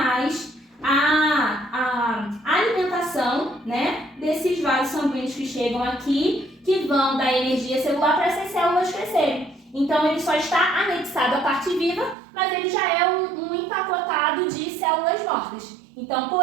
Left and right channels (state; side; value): drops out; left; at 12.2 s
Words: a alimentação, né, desses vasos sanguíneos que chegam aqui, que vão dar energia celular para essas células crescerem. Então, ele só está anexado à parte viva, mas ele já é um empacotado de células mortas. Então,